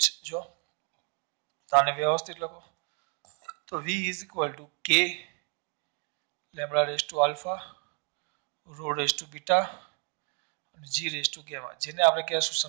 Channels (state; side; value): quieter; left; 36.2 dB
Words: જ જો આને વ્યવસ્થિત લખો તો v is equal to k lambda raised to alpha rho raised to beta અને g raised to gamma, જેને આપણે કહેશું